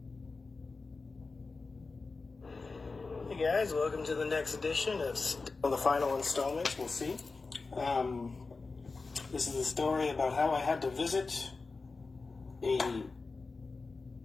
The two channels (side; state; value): right; quieter; 4.0 dB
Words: Hey guys, welcome to the next edition of the final installment. We'll see. This is a story about how I had to visit a